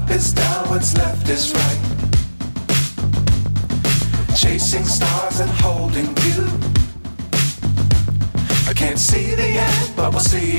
is down, what's left is right. Chasing stars and holding you. I can't see the end, but we'll see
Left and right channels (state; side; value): inverted; both; correlation -1.00